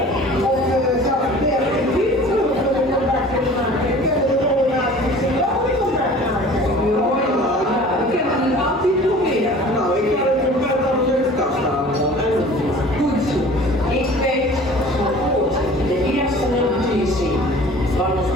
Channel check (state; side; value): normal; both; correlation 0.45